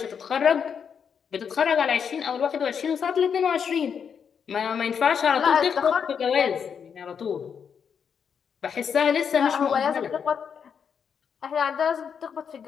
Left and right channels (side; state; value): right; quieter; 7.1 dB